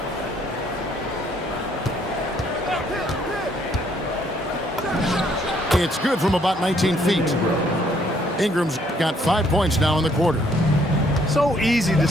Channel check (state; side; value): normal; both; correlation 0.66